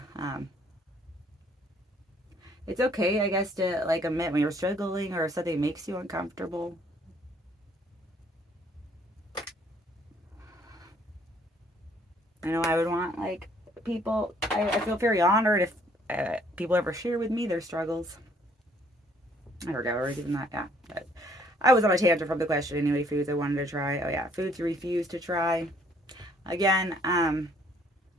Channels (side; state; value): both; normal; correlation 0.63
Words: it's okay, I guess, to like admit when you're struggling or if something makes you uncomfortable. I know I would want like people. I feel very honored if people ever share with me their struggles. I forgot where I was even that. Yeah, but I was on a tangent from the question anyway. Foods I wanted to try. Oh yeah, foods you refuse to try. Again,